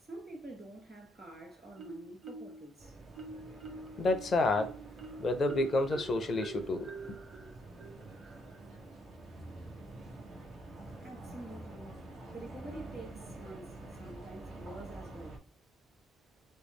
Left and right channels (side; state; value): both; normal; correlation 0.73